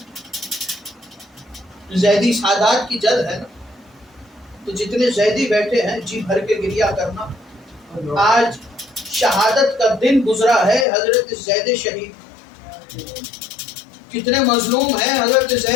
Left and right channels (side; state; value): right; drops out; at 10.9 s